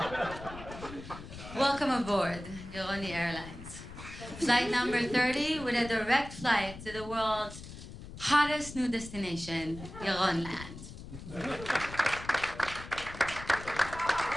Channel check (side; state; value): left; noise; rumble, 13 dB below the sound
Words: Welcome aboard Yaroni Airlines. Flight number 30 with a direct flight to the world's hottest new destination, Yaronland.